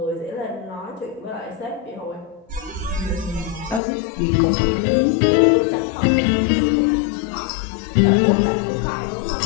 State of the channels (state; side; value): drops out; right; at 3.8 s